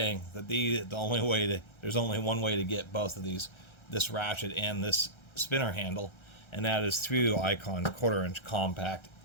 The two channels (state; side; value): late; right; 1.3 ms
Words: that there's only one way to get both of these, this ratchet and this spinner handle, and that is through Icon's 1/4 inch compact